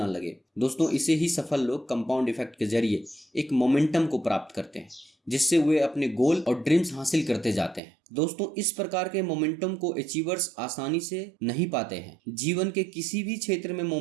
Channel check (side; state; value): left; drops out; at 7.8 s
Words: लगे। दोस्तों, इसे ही सफल लोग कंपाउंड इफेक्ट के जरिए एक मोमेंटम को प्राप्त करते हैं, जिससे वे अपने गोल और ड्रीम्स हासिल करते जाते हैं। दोस्तों, इस प्रकार के मोमेंटम को अचीवर्स आसानी से नहीं पाते हैं। जीवन के किसी भी क्षेत्र में